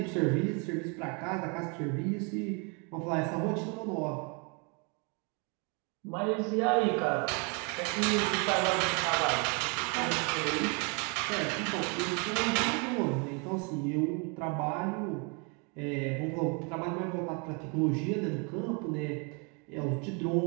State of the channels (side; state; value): left; quieter; 34.2 dB